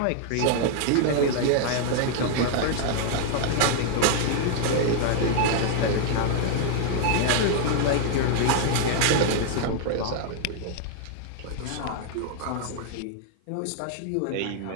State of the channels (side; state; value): both; different; correlation 0.00